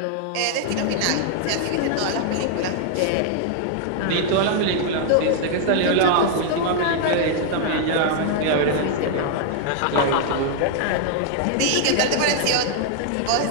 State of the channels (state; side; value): different; both; correlation -0.01